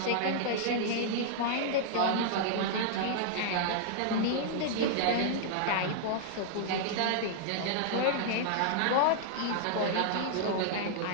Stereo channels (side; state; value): both; different; correlation -0.01